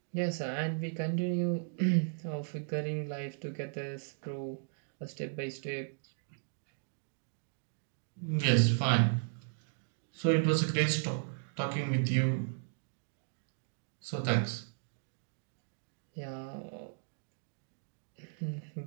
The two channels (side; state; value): left; silent; digital silence